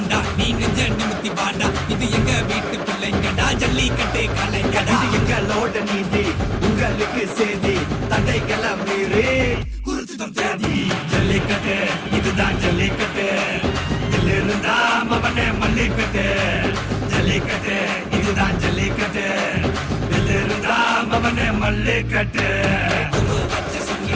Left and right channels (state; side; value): identical; both; correlation 1.00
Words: நீ நெஞ்ச நிமித்தி பாண்டா இது எங்க வீட்டு பிள்ளைங்கடா ஜல்லிக்கட்டு கலைஞடா இது எங்களோட நீதி உங்களுக்கு செய்தி தடைகளை மீறி குறிச்சுதான் தேதி ஜல்லிக்கட்டு இதுதான் ஜல்லிக்கட்டு இதிலிருந்தா மவனே மல்லிக்கட்டு ஜல்லிக்கட்டு இதுதான் ஜல்லிக்கட்டு இதிலிருந்தா மவனே மல்லிக்கட்டு கொம்பு வச்ச